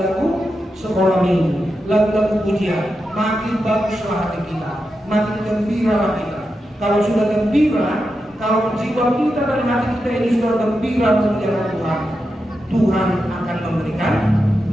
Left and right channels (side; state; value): both; normal; correlation 0.88